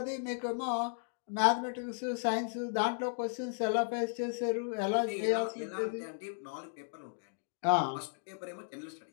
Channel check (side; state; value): right; silent; digital silence